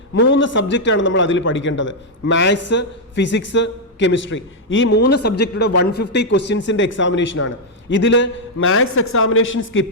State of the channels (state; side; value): normal; both; correlation -0.03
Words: 3 സബ്ജക്റ്റാണ് നമ്മൾ അതിൽ പഠിക്കേണ്ടത്: മാത്സ്, ഫിസിക്സ്, കെമിസ്ട്രി. ഈ 3 സബ്ജക്റ്റുടെ 150 ക്വസ്റ്റ്യൻസിന്റെ എക്സാമിനേഷനാണ്. ഇതിൽ മാത്സ് എക്സാമിനേഷൻ